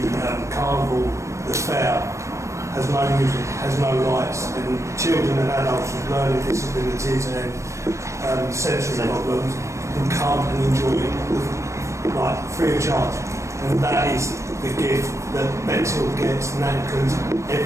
carnival, the fair, has no music, has no lights, and children and adults with learning disabilities and sensory problems can come and enjoy it like free of charge. And that is the gift that Bexhill gets, and that includes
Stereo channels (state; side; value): late; left; 0.15 ms